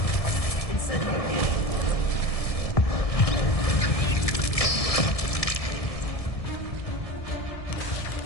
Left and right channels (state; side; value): late; right; 1.7 ms